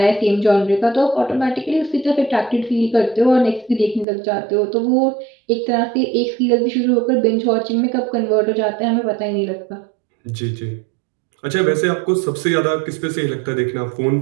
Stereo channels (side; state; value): left; drops out; at 4.0 s